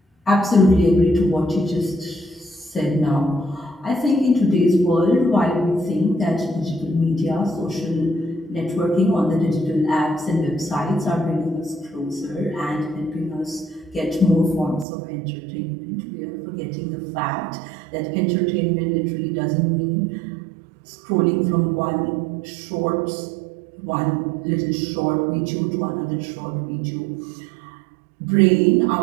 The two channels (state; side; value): drops out; left; at 14.9 s